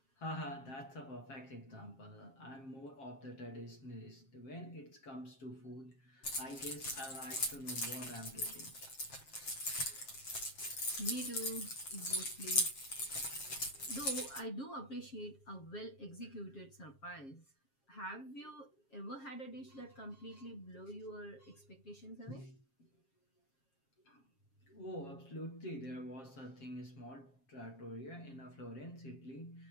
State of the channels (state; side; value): late; right; 7.4 ms